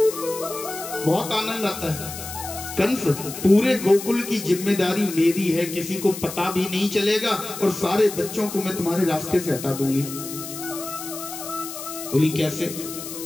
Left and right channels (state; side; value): noise; left; hiss, 10 dB below the sound